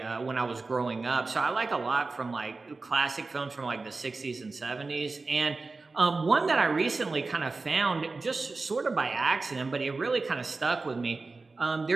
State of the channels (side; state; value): left; quieter; 3.8 dB